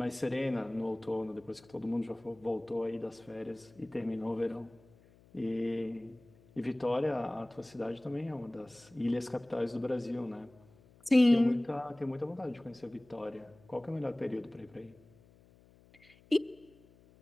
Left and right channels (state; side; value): noise; left; hum, 27 dB below the sound